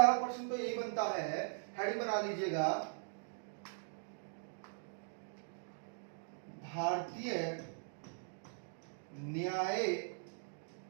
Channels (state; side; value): silent; left; digital silence